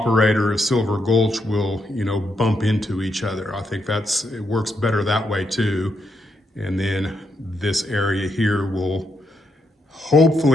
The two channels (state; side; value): normal; both; correlation 0.80